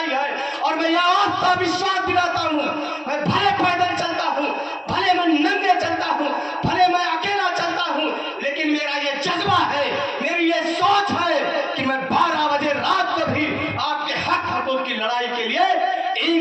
है। और मैं यह आस्था विश्वास दिलाता हूँ, मैं भले पैदल चलता हूँ, भले मैं नंगे चलता हूँ, भले मैं अकेला चलता हूँ, लेकिन मेरा ये जज्बा है, मेरी ये सोच है कि मैं 12 बजे रात को भी आपके हक की लड़ाई के लिए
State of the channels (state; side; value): identical; both; correlation 1.00